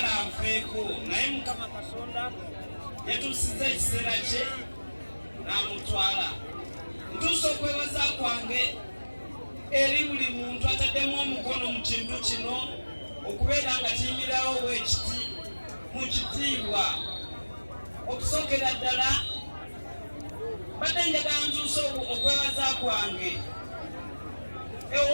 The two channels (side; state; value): both; inverted; correlation -1.00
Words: anfeeko naye Mukama Katonda yatuusizza ekiseera kye n'amutwala. Ntuusa okwebaza kwange eri buli muntu ataddemu omukono mu kintu kino okubeera nga kiyimirawo bwekiti mu kitiibwa. Okusookera ddala badde njagala ntuusa okwebaza kwange